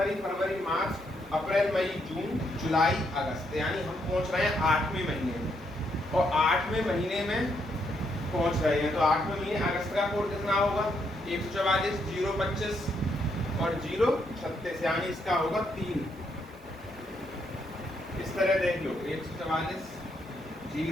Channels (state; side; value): normal; both; correlation 0.76